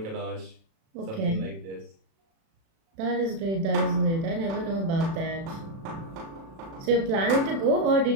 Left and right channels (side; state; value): left; late; 36 ms